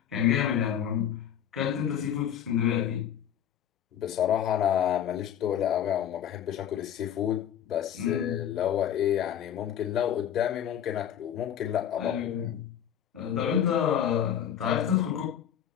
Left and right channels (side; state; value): right; quieter; 9.6 dB